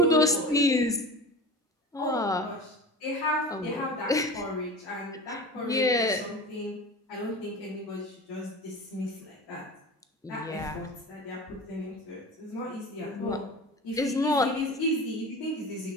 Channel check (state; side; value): normal; both; correlation 0.33